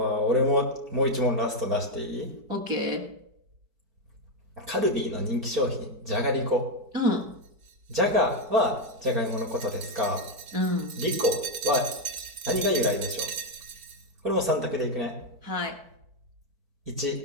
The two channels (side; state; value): left; late; 4.6 ms